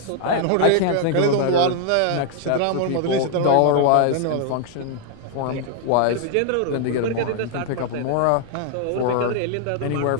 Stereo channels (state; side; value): different; both; correlation 0.00